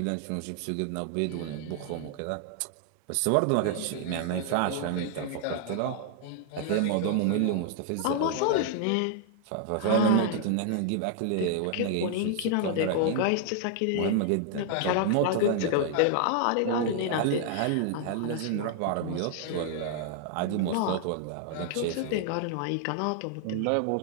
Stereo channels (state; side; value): different; both; correlation 0.00